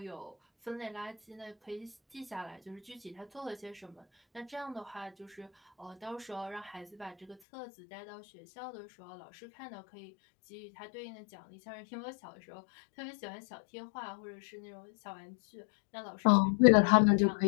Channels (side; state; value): right; drops out; at 7.4 s